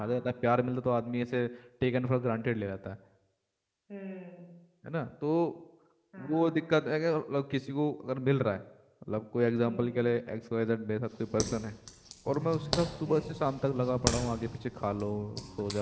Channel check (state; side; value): identical; both; correlation 1.00